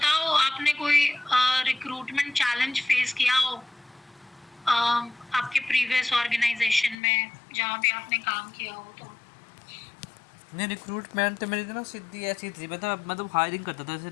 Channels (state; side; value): drops out; right; at 7.0 s